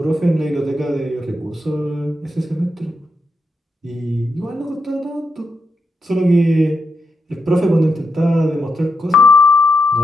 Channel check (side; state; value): both; normal; correlation 0.84